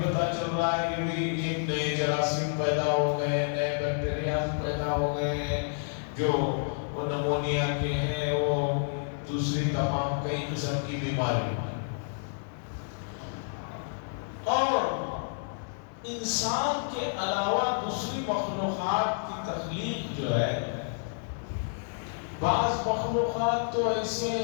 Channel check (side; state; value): right; silent; 56 dB below the other